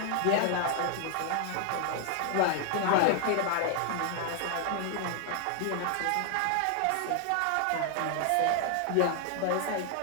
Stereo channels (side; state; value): both; different; correlation 0.00